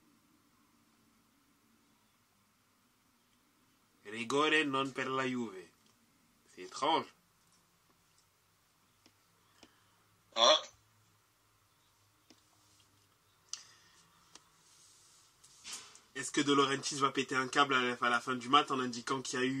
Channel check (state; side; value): identical; both; correlation 1.00